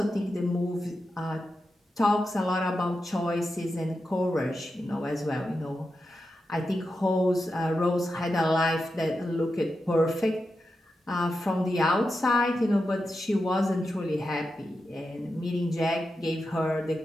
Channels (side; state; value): both; normal; correlation 0.89